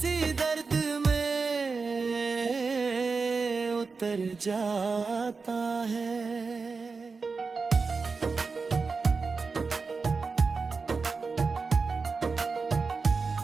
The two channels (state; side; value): quieter; left; 4.6 dB